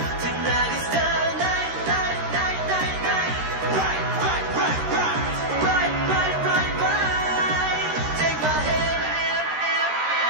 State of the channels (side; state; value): left; late; 13 ms